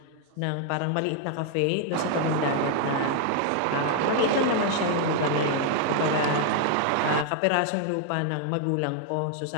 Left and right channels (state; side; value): different; both; correlation 0.00